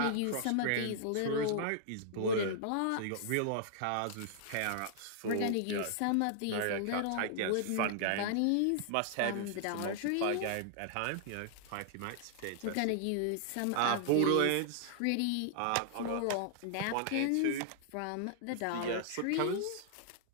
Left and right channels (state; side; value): different; both; correlation -0.01